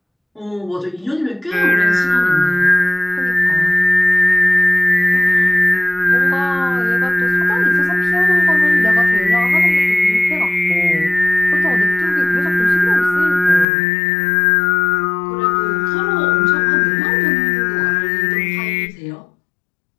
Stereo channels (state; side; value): drops out; right; at 13.7 s